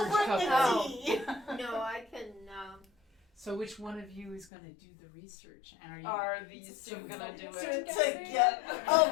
bring the couple. tea. No, I can, So which one of you is gonna do the research? And are you Are these two gonna do it To get. Oh,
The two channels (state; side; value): drops out; right; at 4.5 s